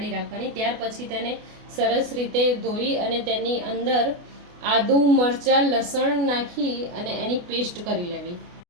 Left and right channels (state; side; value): late; left; 28 ms